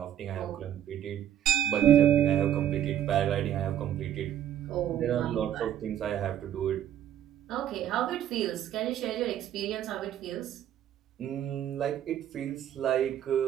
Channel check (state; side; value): quieter; left; 10.6 dB